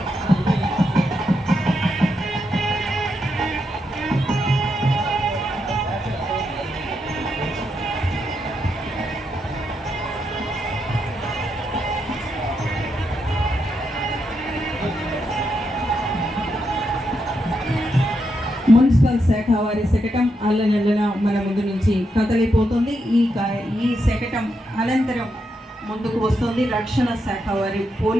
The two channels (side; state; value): both; normal; correlation 0.82